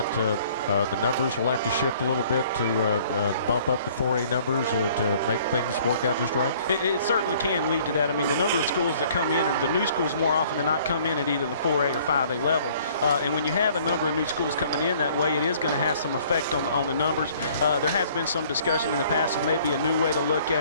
the numbers will have to shift a little bit to bump up the 4A numbers to make things work out just right? It certainly can lead to that. I mean, the number of schools that come in, or the new schools more often than not, come in at either the 4A or 5A level. And when you have a number of new schools coming in that way, it is going to have some effect on the numbers. There has been some discussion in the past of maybe a new way to look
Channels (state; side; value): inverted; both; correlation -0.56